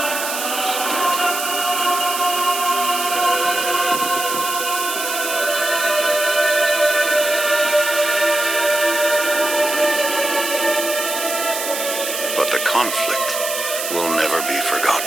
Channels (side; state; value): right; noise; hiss, 4 dB below the sound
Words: But the conflict will never be